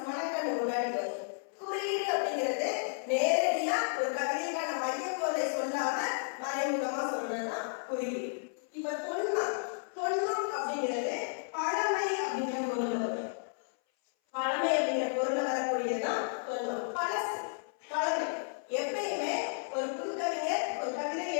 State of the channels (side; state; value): right; silent; 56 dB below the other